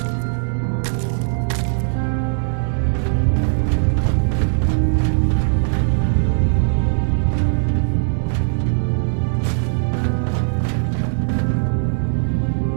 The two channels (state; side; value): silent; left; digital silence